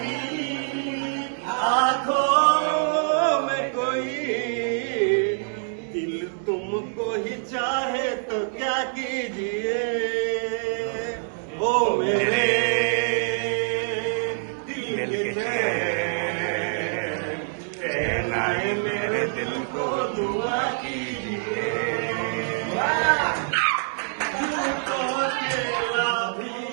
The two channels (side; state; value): left; silent; digital silence